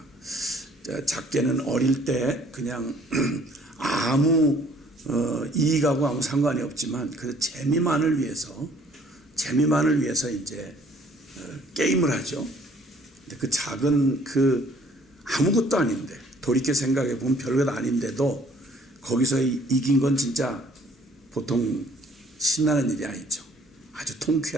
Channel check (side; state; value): both; normal; correlation 0.58